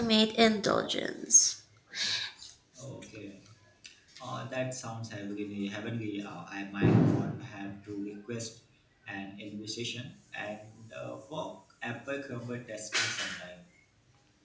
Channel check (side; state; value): both; identical; correlation 1.00